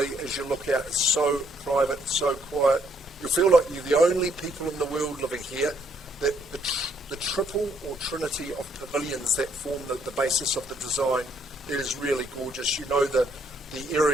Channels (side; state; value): both; normal; correlation 0.70